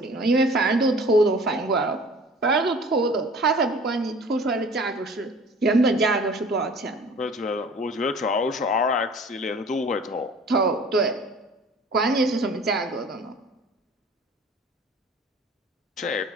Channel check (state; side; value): normal; both; correlation 0.47